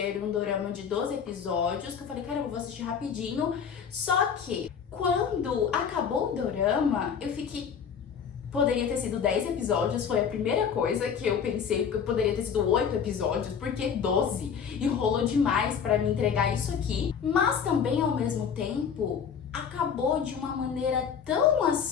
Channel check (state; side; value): quieter; right; 7.1 dB